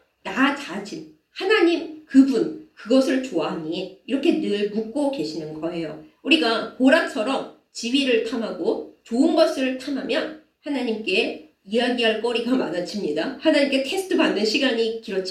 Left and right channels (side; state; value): both; identical; correlation 1.00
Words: 나 자신, 하나님 그분, 그것을 좋아하니? 이렇게 늘 묻고 계시는 거예요. 우리가 고라처럼 지위를 탐하고 좋은 것을 탐하면 하나님께 이야기할 거리가 많아집니다. 하나님께 테스트 받는 시간이